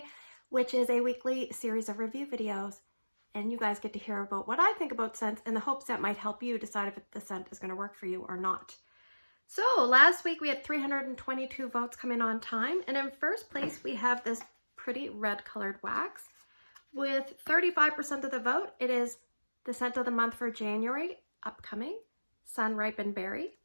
which is a weekly series of review videos. And you guys get to hear about what I think about scents in the hopes that might help you decide if the scent is going to work for you or not. So last week we had 322 votes come in on time. And in first place, we have this pretty red colored wax. With 35% of the vote, it is the scent of the month for January, upcoming, Sun-Ripened Berry.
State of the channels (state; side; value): inverted; both; correlation -1.00